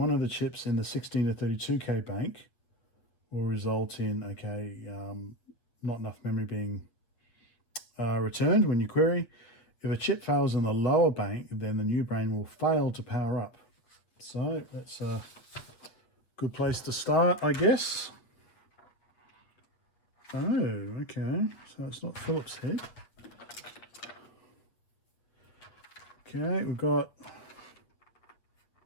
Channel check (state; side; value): late; right; 8.5 ms